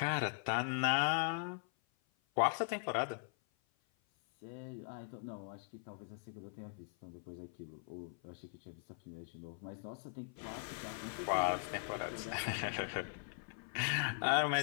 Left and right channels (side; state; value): right; silent; 51 dB below the other